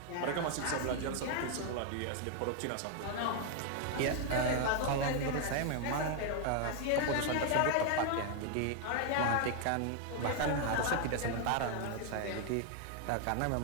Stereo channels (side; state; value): both; different; correlation 0.00